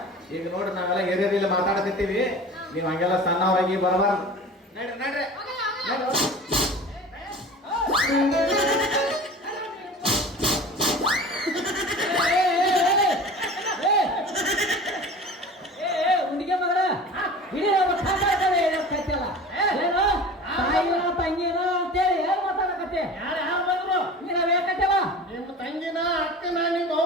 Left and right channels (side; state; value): both; normal; correlation 0.38